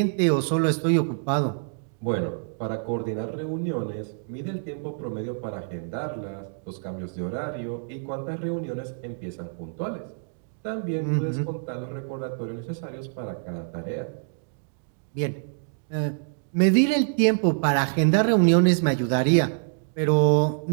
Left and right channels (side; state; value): left; silent; digital silence